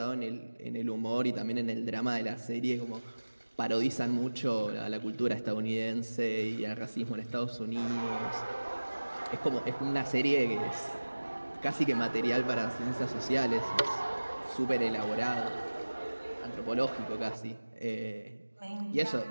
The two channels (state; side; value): inverted; both; correlation -1.00